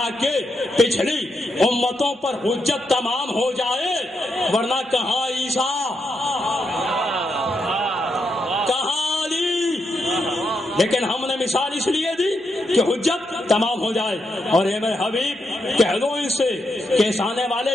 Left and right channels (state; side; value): normal; both; correlation 0.82